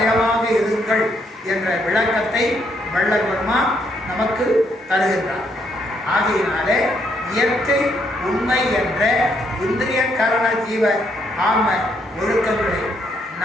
இருங்கள் என்ற விளக்கத்தை வள்ளல் பெருமான் நமக்கு தருகின்றார். ஆகையினாலே இயற்கை உண்மை என்ற இந்திரிய கரண ஜீவ ஆன்ம ஒழுக்கங்களை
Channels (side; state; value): both; normal; correlation 0.73